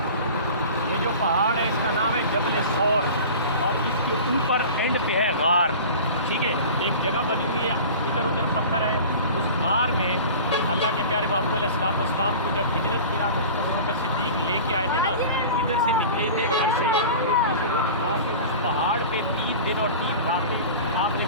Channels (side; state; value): both; inverted; correlation -0.37